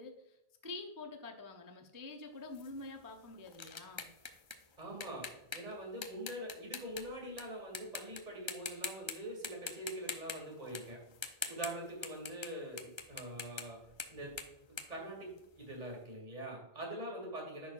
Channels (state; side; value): late; left; 1.3 ms